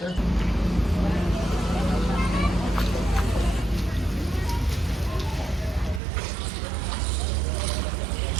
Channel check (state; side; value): drops out; left; at 6.0 s